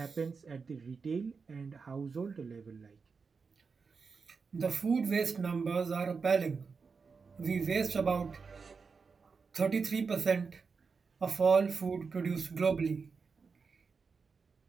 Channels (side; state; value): left; quieter; 5.1 dB